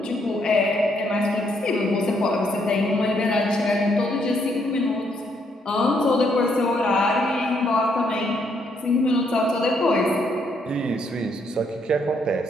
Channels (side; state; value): both; normal; correlation 0.73